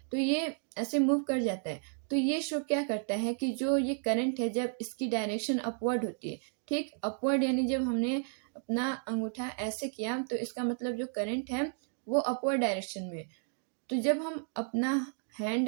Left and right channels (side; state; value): left; silent; 56 dB below the other